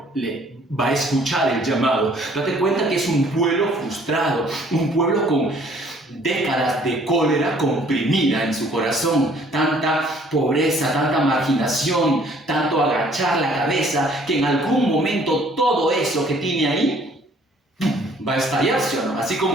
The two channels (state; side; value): normal; both; correlation 0.58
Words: le va a escuchar el llamado. Date cuenta que es un pueblo frustrado, un pueblo décadas de cólera comprimida en su corazón, tanta pobreza, tanta marginación, tanto agachar la cabeza, que en algún momento todo eso que tiene ahí va a estallar, ¿sí o no? Así